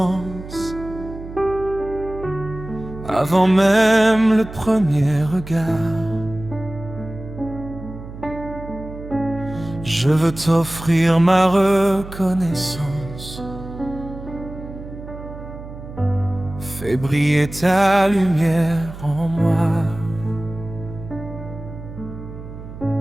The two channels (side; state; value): right; noise; hum, 13 dB below the sound